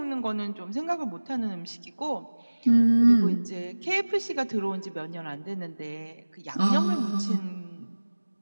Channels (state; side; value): inverted; both; correlation -1.00